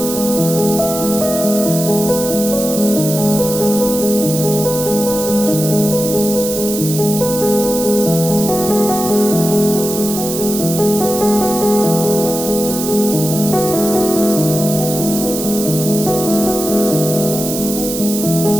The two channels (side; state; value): right; noise; hiss, 6 dB below the sound